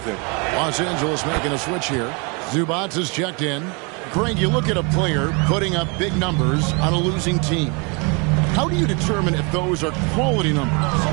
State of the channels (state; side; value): quieter; left; 32.0 dB